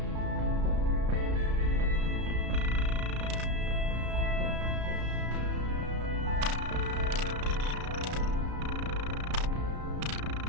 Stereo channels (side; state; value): left; late; 33 ms